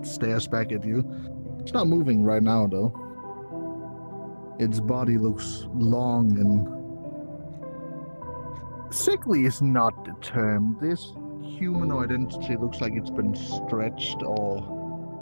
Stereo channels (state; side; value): inverted; both; correlation -1.00